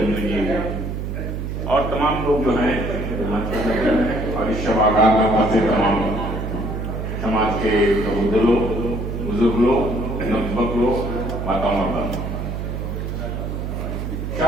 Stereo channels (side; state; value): right; noise; hum, 4 dB below the sound